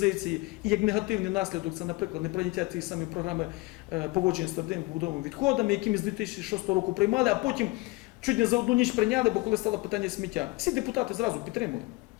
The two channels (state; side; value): quieter; right; 23.2 dB